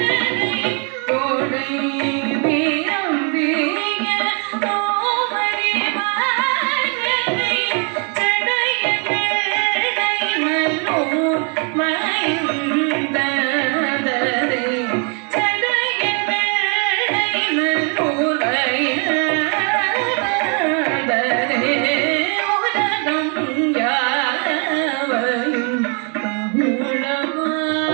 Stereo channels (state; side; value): quieter; left; 37.8 dB